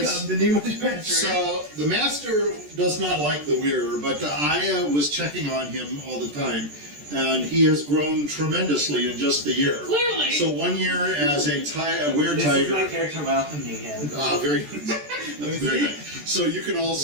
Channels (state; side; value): late; left; 14 ms